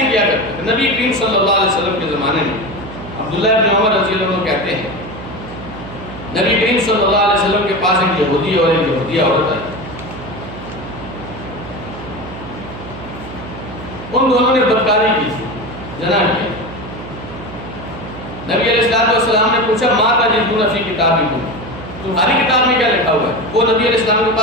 ہی کیا کرتے تھے. نبی کریم صلی اللہ علیہ وسلم کے زمانے میں عبداللہ ابن عمر رضی اللہ عنہ کہتے ہیں نبی کریم صلی اللہ علیہ وسلم کے پاس ایک یہودی اور ایک یہودیہ عورت آئی. ان دونوں نے بدکاری کی تھی، زنا کیا. نبی علیہ السلام نے پوچھا ماں تجدون فی کتابکم، تمہاری کتاب میں کیا لکھا ہوا ہے؟ وہ نبی علیہ السلام کے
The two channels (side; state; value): right; noise; hum, 12 dB below the sound